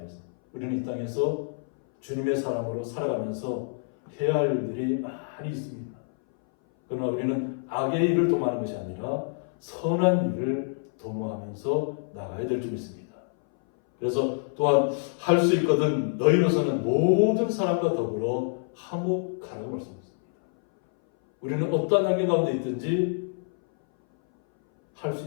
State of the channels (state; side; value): silent; right; 59 dB below the other